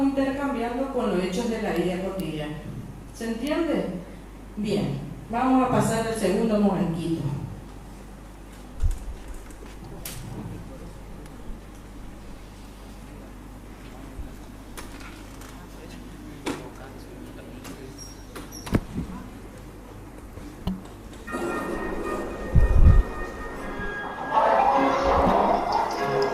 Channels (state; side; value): identical; both; correlation 1.00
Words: intercambiando con los hechos de la vida cotidiana. ¿Se entiende? Bien, vamos a pasar al segundo momentito.